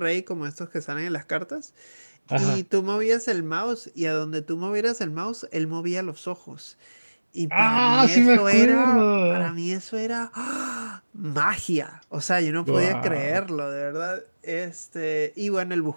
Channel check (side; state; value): both; inverted; correlation -1.00